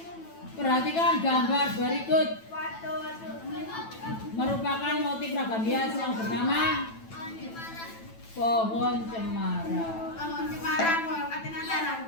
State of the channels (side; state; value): right; late; 9.0 ms